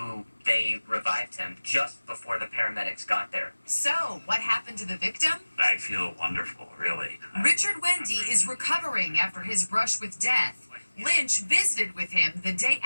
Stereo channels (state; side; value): inverted; both; correlation -1.00